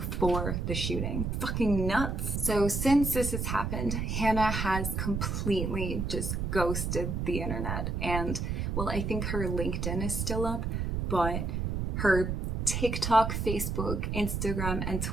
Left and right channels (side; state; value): right; noise; rumble, 1 dB below the sound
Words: the shooting. Fucking nuts. So since this has happened, Hannah has completely just ghosted the internet. And, well, I think her LinkedIn is still up, but her TikTok, Facebook, Instagram, and